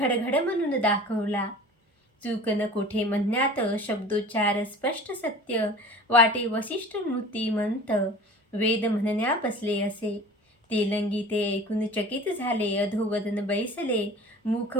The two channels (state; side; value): normal; both; correlation 0.41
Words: म्हणून दाखवला. चूक न कोठे म्हणण्यात, शब्दोच्चार स्पष्ट सत्य, वाटे वसिष्ठ मूर्तिमंत, वेद म्हणण्या बसले असे. तेलंगी ते ऐकून चकित झाले, अधोवदन बैसले,